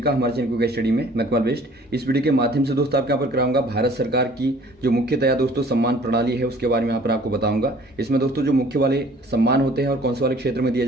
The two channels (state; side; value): normal; both; correlation 0.53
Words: हमारे चैनल क्विक स्टडी में। मैं कमल बेस्ट। इस वीडियो के माध्यम से दोस्तों आपके यहाँ पर कराऊंगा भारत सरकार की जो मुख्यतया दोस्तों सम्मान प्रणाली है उसके बारे में यहाँ पर आपको बताऊंगा। इसमें दोस्तों जो मुख्य वाले सम्मान होते हैं और कौन से वाले क्षेत्र में दिए